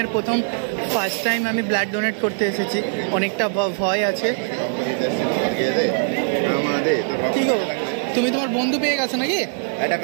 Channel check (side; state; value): left; silent; 65 dB below the other